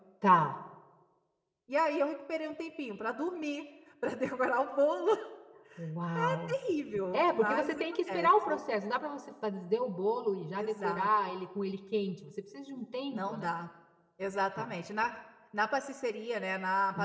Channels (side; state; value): both; identical; correlation 1.00